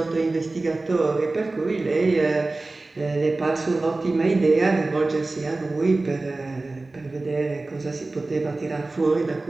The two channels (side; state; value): left; quieter; 3.2 dB